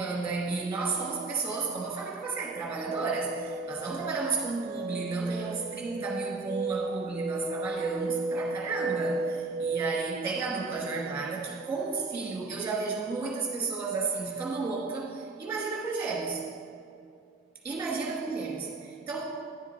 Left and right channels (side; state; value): left; quieter; 3.5 dB